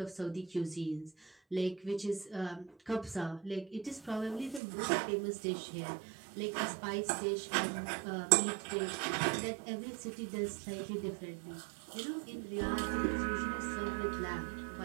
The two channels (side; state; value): left; drops out; at 4.6 s